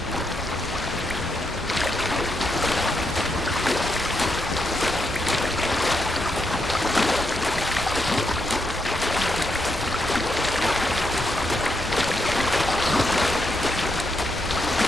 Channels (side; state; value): both; normal; correlation 0.81